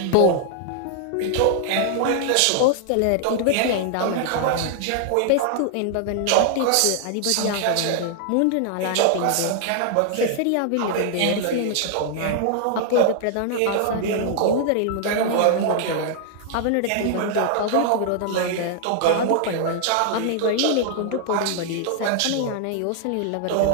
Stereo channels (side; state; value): both; different; correlation 0.00